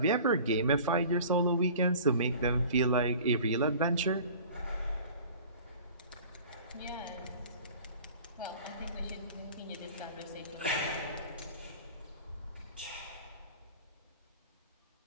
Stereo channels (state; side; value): inverted; both; correlation -0.44